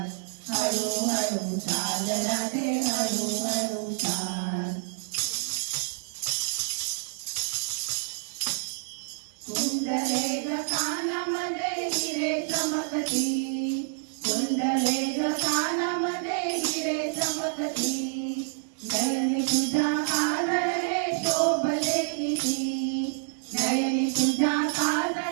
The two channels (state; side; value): silent; left; digital silence